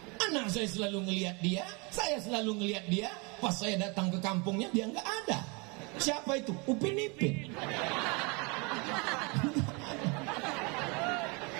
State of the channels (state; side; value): quieter; left; 30.1 dB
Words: Anak saya selalu ngelihat dia, saya selalu ngelihat dia. Pas saya datang ke kampungnya dia nggak ada. Siapa itu? Upin Ipin.